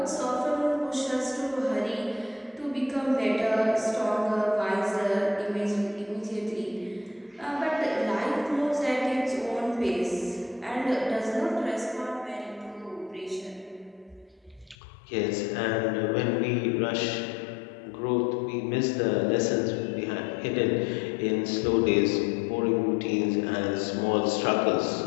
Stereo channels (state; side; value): drops out; right; at 14.8 s